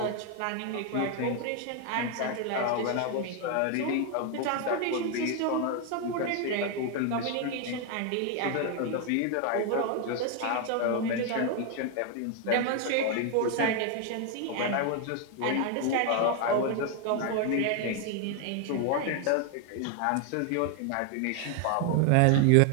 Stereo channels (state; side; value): different; both; correlation 0.01